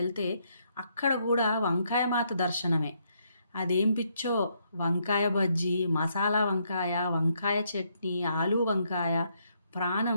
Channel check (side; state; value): both; inverted; correlation -0.74